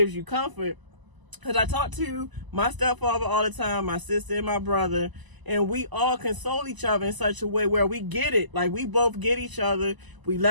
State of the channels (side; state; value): left; late; 1.0 ms